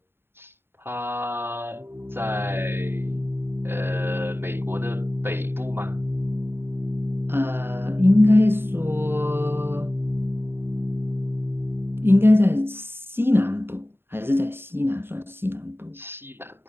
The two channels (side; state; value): left; late; 0.11 ms